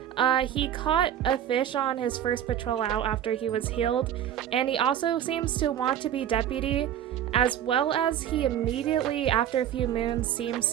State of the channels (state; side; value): quieter; left; 10.5 dB